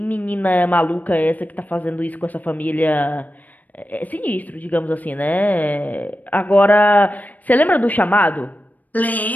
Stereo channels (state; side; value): late; right; 0.078 ms